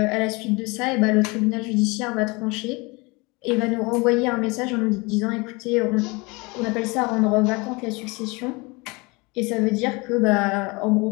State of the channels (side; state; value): right; quieter; 26.4 dB